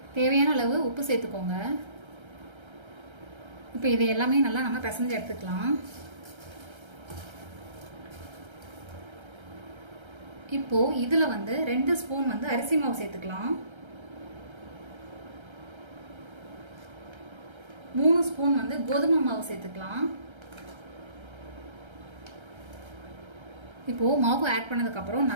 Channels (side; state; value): left; late; 1.3 ms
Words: தேவையான அளவு உப்பு சேர்த்துக்கோங்க. இப்போ இதை எல்லாமே நல்லா நம்ம பிசைஞ்சு எடுத்துக்கலாம். இப்போது இதில் 2 ஸ்பூன் அரிசி மாவு சேர்த்துக்கலாம். 3 ஸ்பூன் கோதுமை மாவு சேர்த்துக்கலாம். இப்போது மாவு ஆட் பண்ணதுக்கப்புறம்